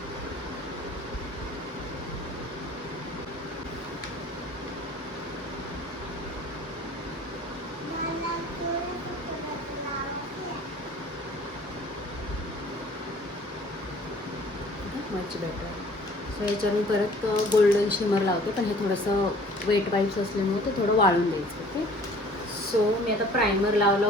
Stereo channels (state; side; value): normal; both; correlation 0.52